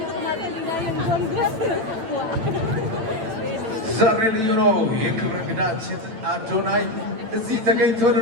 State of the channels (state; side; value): late; left; 9.1 ms